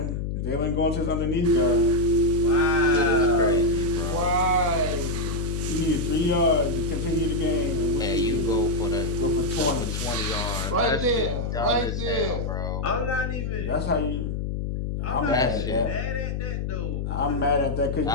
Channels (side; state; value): left; noise; hum, 2 dB below the sound